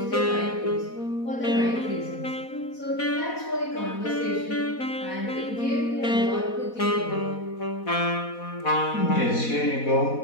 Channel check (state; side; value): late; right; 4.1 ms